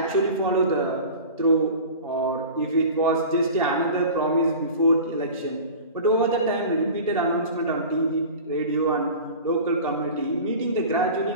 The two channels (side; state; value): both; inverted; correlation -0.37